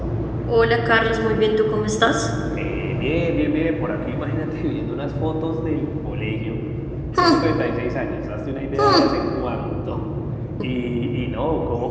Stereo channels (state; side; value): identical; both; correlation 1.00